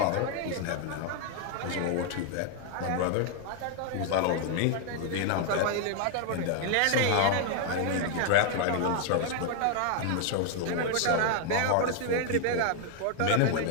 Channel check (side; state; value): both; different; correlation 0.00